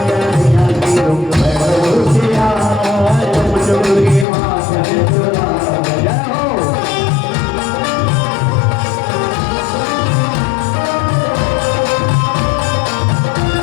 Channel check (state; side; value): drops out; right; at 4.2 s